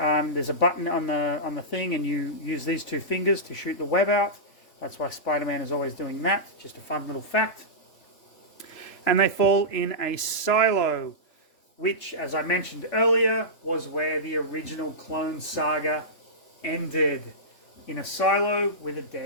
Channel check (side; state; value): right; late; 3.3 ms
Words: a button on the thing, and you use these 2 fingers to shoot the web out. That's why Spider-Man is always doing that. Just a fun little fact. And they fall in a silo, which, as I mentioned earlier, was where the original Clone Saga ended. In a silo with a